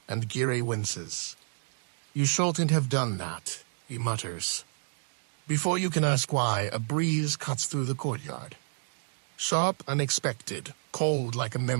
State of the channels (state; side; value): silent; left; digital silence